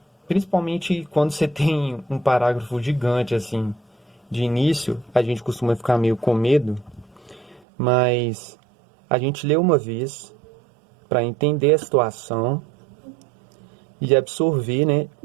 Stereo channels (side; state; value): left; drops out; at 7.6 s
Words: principalmente quando você tem um parágrafo gigante assim, de início, a gente costuma ficar meio com medo, mas a gente lê uma vez para entender a situação e absorver, né,